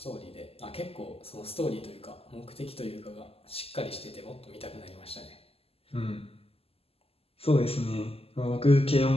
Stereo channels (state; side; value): late; right; 0.28 ms